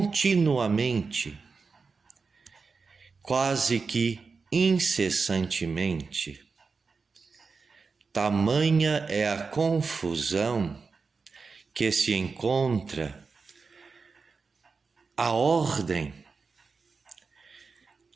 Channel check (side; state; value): left; quieter; 4.7 dB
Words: quase que incessantemente. Tamanha é a confusão que se encontra a ordem,